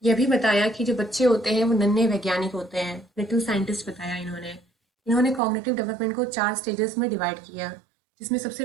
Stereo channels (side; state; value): left; drops out; at 5.4 s